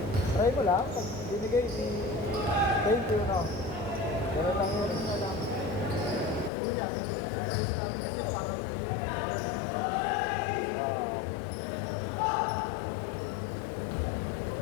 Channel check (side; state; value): right; drops out; at 6.5 s